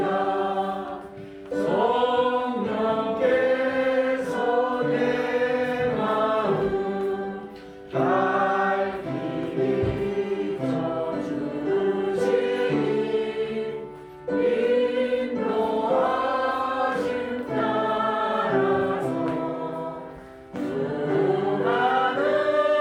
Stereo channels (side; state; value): both; identical; correlation 1.00